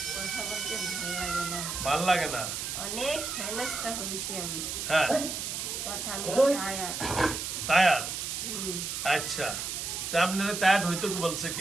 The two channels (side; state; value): right; noise; hiss, 4 dB below the sound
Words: কথা বলতে ভালো লাগে না। ভাল লাগে না? অনেক হেনস্থা হয়েছি আমি। হ্যাঁ কথা আমি টায়ার। টায়ার? আচ্ছা, তা আপনার টায়ার্ড হইতো কি বলছে